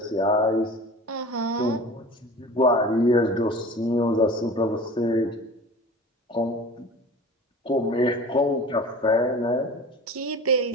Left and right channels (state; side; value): normal; both; correlation 0.39